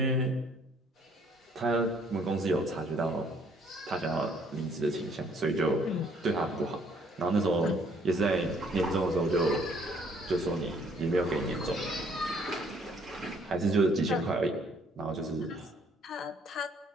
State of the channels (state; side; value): normal; both; correlation 0.63